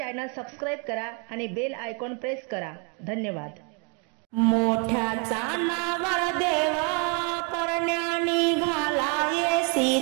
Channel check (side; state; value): left; quieter; 36.3 dB